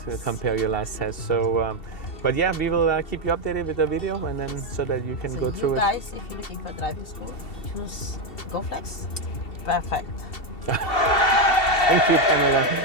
compare your last test. So, but yeah, we will keep you updated with the video, and then so that you can So go you through it. guys, if you're looking for driving school, choose Goflex. Perfect. Thank you, Pamela.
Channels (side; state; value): right; late; 2.7 ms